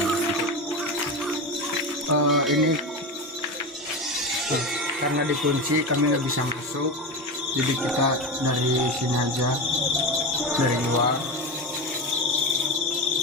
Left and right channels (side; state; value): both; normal; correlation 0.21